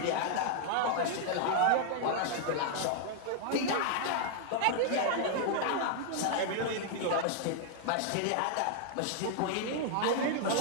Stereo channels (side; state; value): both; different; correlation 0.00